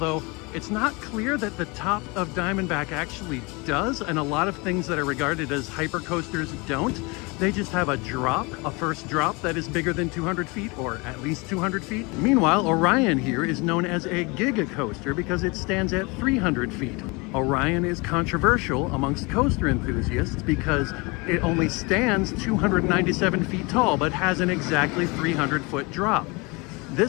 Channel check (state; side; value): quieter; right; 27.2 dB